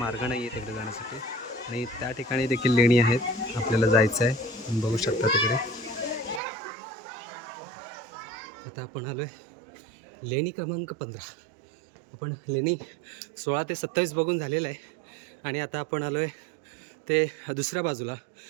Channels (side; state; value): left; drops out; at 6.4 s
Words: नाही आहे तिकडे जाण्यासाठी. आणि त्या ठिकाणी देखील लेणी आहेत, आपल्याला जायचं आहे. बघू शकता तिकडे. आता आपण आलो आहे लेणी क्रमांक 15. आपण लेणी 16 ते 27 बघून झालेलं आहे आणि आता आपण आलो आहे ते दुसऱ्या बाजूला,